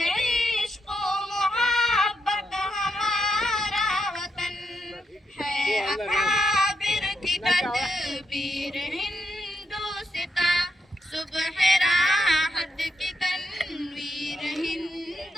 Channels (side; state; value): both; normal; correlation 0.80